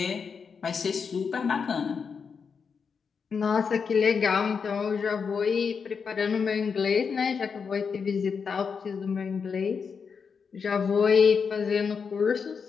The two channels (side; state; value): right; quieter; 5.9 dB